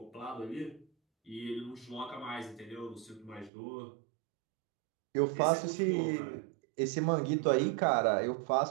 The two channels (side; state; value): left; drops out; at 3.5 s